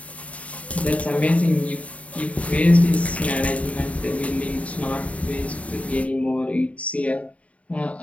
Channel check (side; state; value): right; late; 0.067 ms